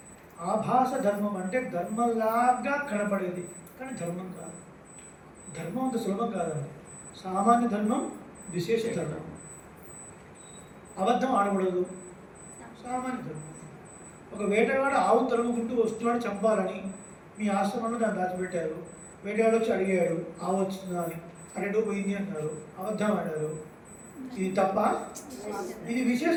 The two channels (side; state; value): both; identical; correlation 1.00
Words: ఆభాస ధర్మం అంటే ధర్మంలాగా కనపడేది కానీ ధర్మం కాదు. ధర్మం అంత సులభం కాదండి. సామాన్య ధర్మం, విశేష ధర్మం. అబద్ధం ఆడకూడదు, సామాన్య ధర్మం. ఒక వేటగాడు ఆవు తరుముకుంటూ వస్తున్నాడు చంపాలని, మీ ఆశ్రమంలో దాన్ని దాచిపెట్టారు. వేటగాడు వచ్చి అడిగాడు ఆవు వచ్చిందా అని, అరెండో పోయింది అన్నారు, అబద్ధం ఆడారు. ఇది తప్ప? ఇది విశేష